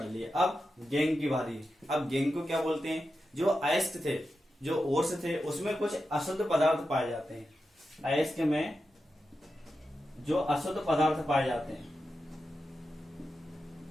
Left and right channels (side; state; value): both; normal; correlation 0.90